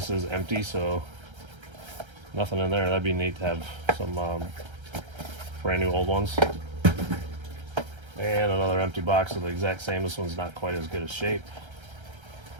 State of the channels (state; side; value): late; left; 1.3 ms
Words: is empty, so nothing in there. That'd be neat to have some brand new old ones. And another empty box of the exact same. This one's not quite as good a shape.